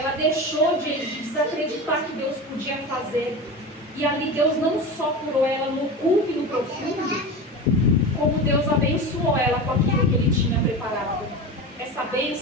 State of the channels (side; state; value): both; normal; correlation 0.27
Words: deixou de desacreditar que Deus podia fazer. E ali Deus não só curou ela no oculto e no profundo, como Deus abençoou ela com aquilo que Ele tinha preparado. Essa